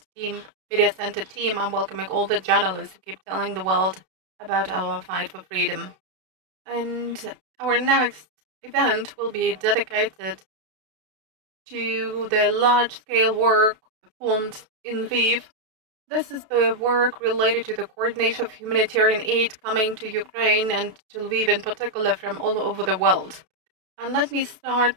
Center team, I'm welcoming all the journalists who keep telling the world about our fight for freedom. And our next event will be dedicated to the large-scale work performed in Lviv. This is the work related to the coordination of humanitarian aid coming to Ukraine and to Lviv in particular from all over the world. And let me start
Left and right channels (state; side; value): late; left; 32 ms